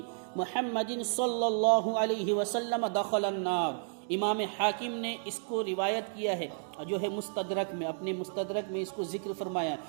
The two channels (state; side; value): silent; left; digital silence